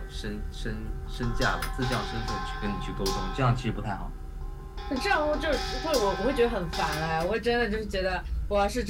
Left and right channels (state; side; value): identical; both; correlation 1.00